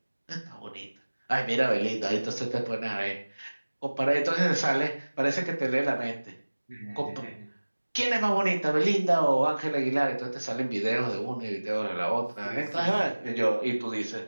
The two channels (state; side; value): inverted; both; correlation -1.00